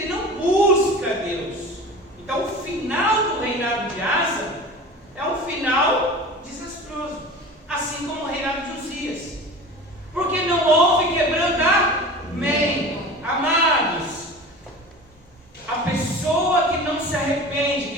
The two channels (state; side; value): normal; both; correlation 0.36